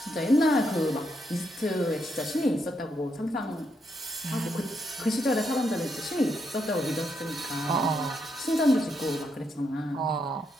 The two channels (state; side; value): normal; both; correlation 0.79